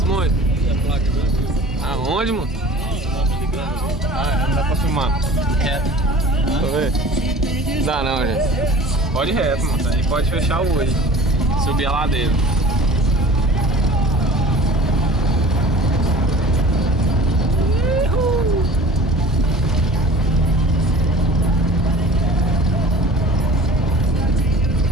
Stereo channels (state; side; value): normal; both; correlation 0.43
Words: Bons? Aonde, mano? Ah, não dá pra filmar. Reto. Deixa eu ver. Dá não, gente. Pode ir reto, mano. Aí pode fechar o olho. Subir a ladeira.